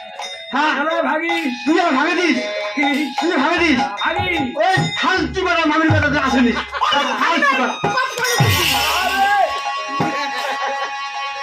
হ্যাঁ এরা ভাগি তুই আমার ভাগে দিস তুই ভাগে দিস ভাগি ওই ফালতু বেড়া মামির বেড়াতে আসেনি ফালতু বেড়া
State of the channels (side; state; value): both; identical; correlation 1.00